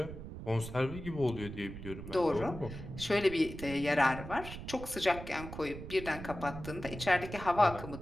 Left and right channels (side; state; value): right; noise; rumble, 10 dB below the sound